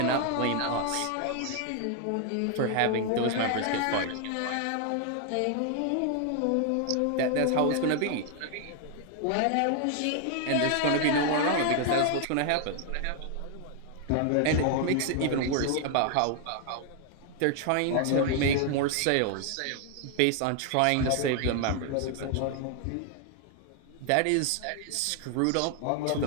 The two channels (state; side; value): different; both; correlation 0.00